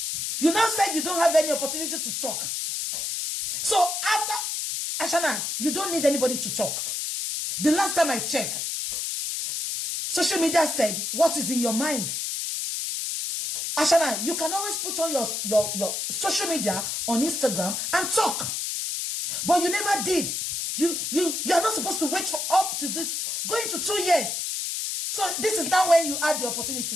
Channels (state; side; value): noise; left; hiss, 2 dB below the sound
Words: You now said you don't have any opportunity to talk. So after Ashana, you don't need anybody to talk. The last time I checked, social media said, what is in your mind? Ashana, you can always put on your social media on Instagram and talk. But you never did. You are not supposed to wait for up to this, going to 2 years. So this is now when you had the